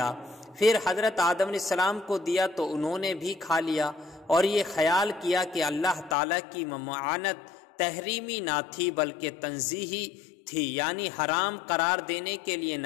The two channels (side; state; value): right; drops out; at 6.2 s